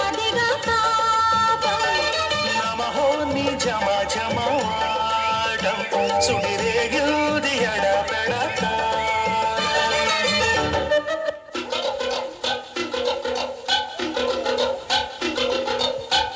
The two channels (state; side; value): identical; both; correlation 1.00